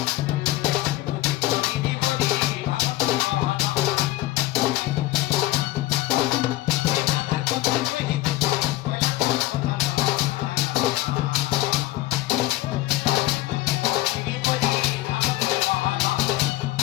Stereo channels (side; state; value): right; quieter; 17.0 dB